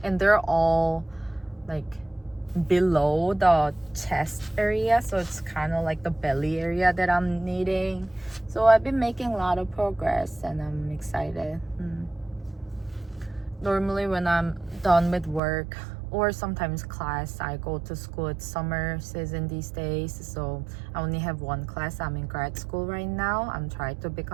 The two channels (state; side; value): drops out; left; at 15.4 s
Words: and they're all like below the chest area, so it's kind of like the belly area that I'm needing. So I've been making a lot of progress, and I'm excited. Normally when I'm done with work or sometimes class, I go to school. It's summer season these days, so I only have one class. I'm in grad school right now. I'm trying to